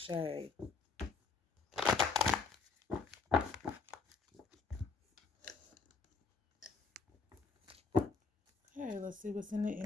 Okay, let's see what's in the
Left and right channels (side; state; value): right; quieter; 4.6 dB